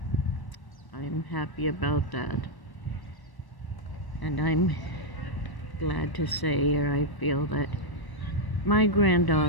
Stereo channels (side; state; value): right; late; 1.1 ms